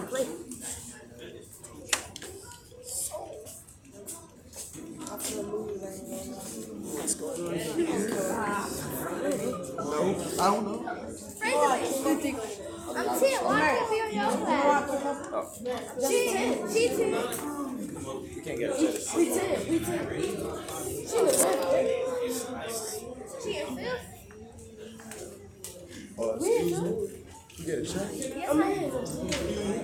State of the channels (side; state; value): both; identical; correlation 1.00